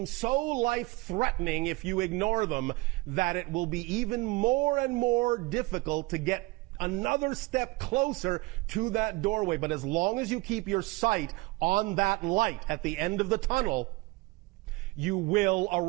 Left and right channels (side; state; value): left; quieter; 23.0 dB